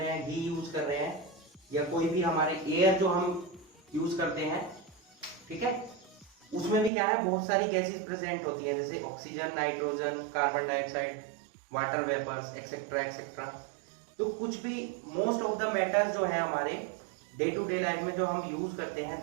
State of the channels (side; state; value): left; drops out; at 6.9 s